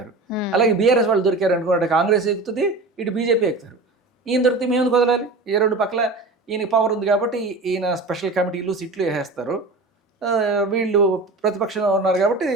అలాగే బీఆర్ఎస్ వాళ్ళు దొరికారు అనుకోండి, అటు కాంగ్రెస్ ఎక్కుతుంది, ఇటు బీజేపీ ఎక్కుతారు. ఈయన దొరికితే మేము ఎందుకు వదలాలి? ఏ రెండు పక్కల ఈయనకి పవర్ ఉంది కాబట్టి ఈయన స్పెషల్ కమిటీలు సీట్లు వేసేస్తారు. వీళ్ళు ప్రతిపక్షంలో ఉన్నారు కాబట్టి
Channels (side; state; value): left; quieter; 3.3 dB